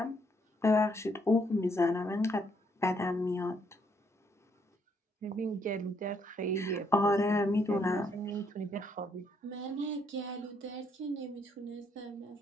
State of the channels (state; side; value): normal; both; correlation 0.71